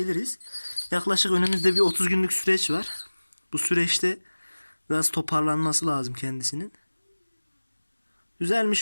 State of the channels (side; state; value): both; inverted; correlation -1.00